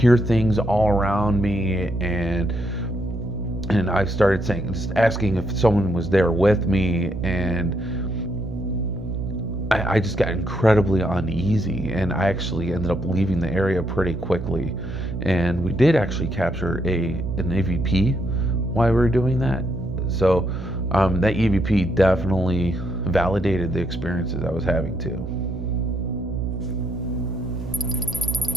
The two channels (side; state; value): right; noise; hum, 7 dB below the sound